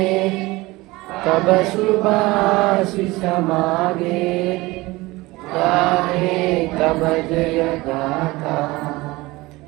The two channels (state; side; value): quieter; left; 20.9 dB